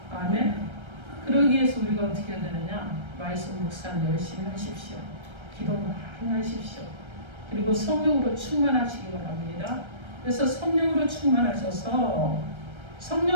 아멘. 그러기 위해서 우리가 어떻게 해야 되느냐? 말씀 묵상 열심히 하십시오. 기도 많이 하십시오. 그리고 성령으로 충만하시기 바랍니다. 그래서 성령으로 충만하셔서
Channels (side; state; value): left; late; 1.3 ms